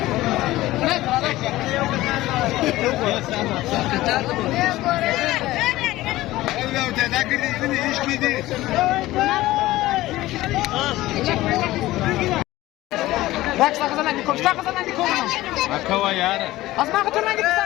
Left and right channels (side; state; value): right; quieter; 17.0 dB